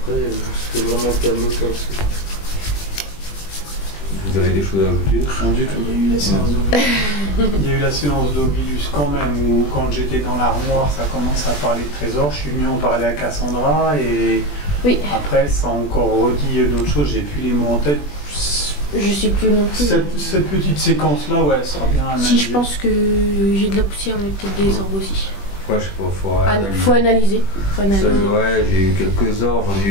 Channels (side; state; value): right; late; 20 ms